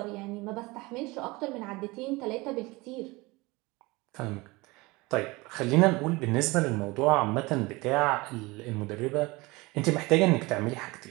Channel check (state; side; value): quieter; left; 23.1 dB